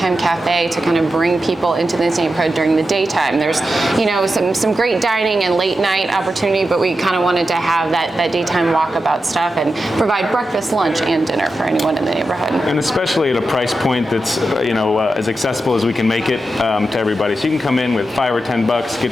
cafe to kind of bring people into this neighborhood during the daytime. There's, some great dining and late night opportunity, but we kind of wanted to have that daytime walkabout stuff and provide breakfast, lunch, and dinner for anyone in the neighborhood. And especially at a price point that's, as accessible as we can make it to everybody. So you can come in with $5 or $10,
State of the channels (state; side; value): normal; both; correlation 0.89